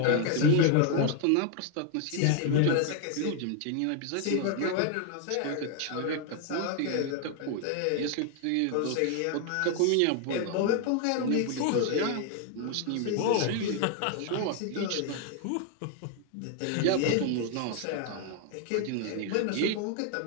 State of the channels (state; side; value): different; both; correlation 0.00